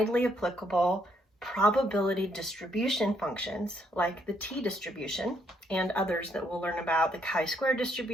applicable probability distribution functions like the t-distribution and others that we'll learn about, the chi-square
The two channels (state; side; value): normal; both; correlation 0.72